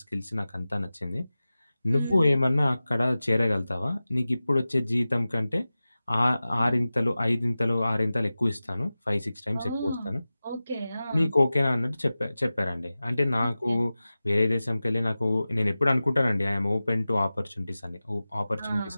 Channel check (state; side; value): inverted; both; correlation -0.96